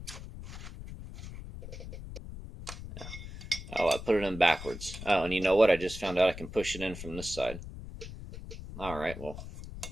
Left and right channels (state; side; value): noise; left; rumble, 11 dB below the sound